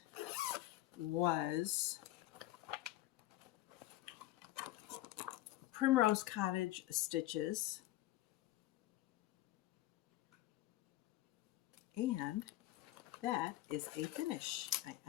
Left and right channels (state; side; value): quieter; right; 16.1 dB